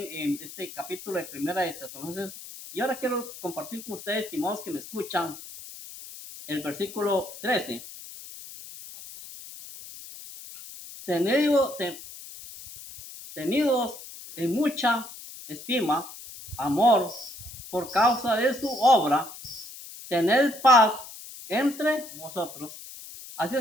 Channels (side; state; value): left; noise; hiss, 14 dB below the sound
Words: en este capítulo de Primera de Tesalonicenses, y ahora quiero compartir con ustedes, estimados que me escuchan, el versículo 13. Tenidos en mucha estima, amor, por causa de su obra, tened paz entre vosotros. Así